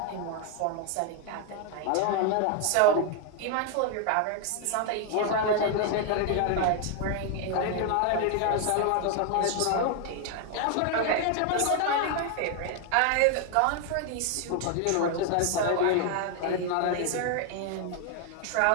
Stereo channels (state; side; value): different; both; correlation 0.01